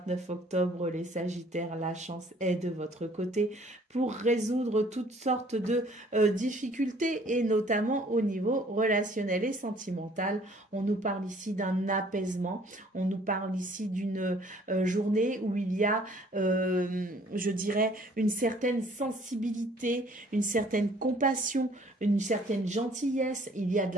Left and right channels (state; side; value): normal; both; correlation 0.57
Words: octobre, les Sagittaires, la chance est de votre côté pour résoudre toutes sortes de difficultés et notamment au niveau relationnel et sentimental. On nous parle ici d'un apaisement, on nous parle ici d'une journée où il y a, je dirais, une certaine sensibilité, une certaine compassion, une certaine gentillesse, il y a de